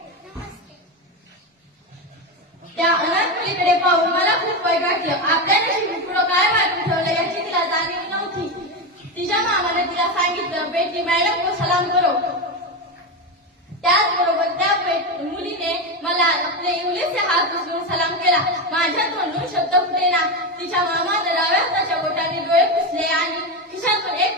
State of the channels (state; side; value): normal; both; correlation 0.15